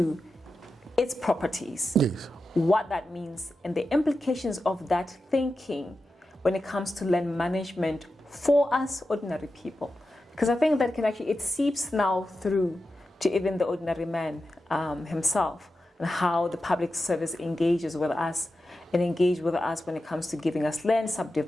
its properties. Yes. What that means and the implications of that thinking when it comes to land management for us ordinary people. Because I think that it seeps now through to even the ordinary man himself, and how the public service engages with us and engage with us when it comes to giving us land,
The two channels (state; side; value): normal; both; correlation 0.91